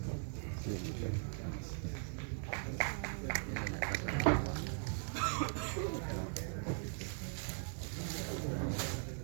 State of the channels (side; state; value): left; silent; 51 dB below the other